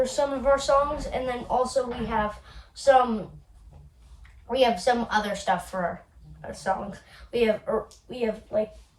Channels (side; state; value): both; identical; correlation 1.00